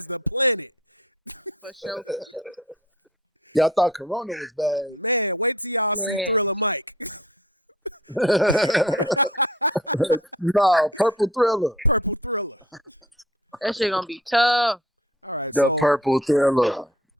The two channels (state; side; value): normal; both; correlation 0.47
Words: For sure, for sure. y'all thought Corona was bad. Man, No, Purple Thriller. that shit gonna be tough. The Purple Thriller.